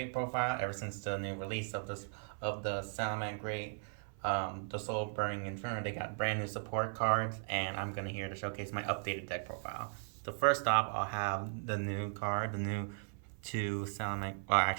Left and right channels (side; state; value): left; silent; 53 dB below the other